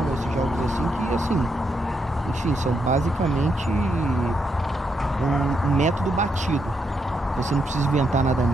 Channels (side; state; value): both; normal; correlation 0.80